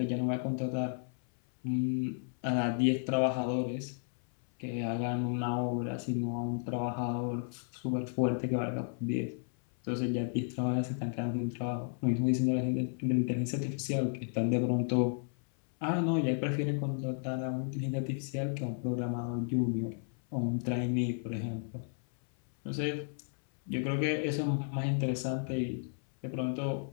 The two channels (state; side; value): silent; right; 56 dB below the other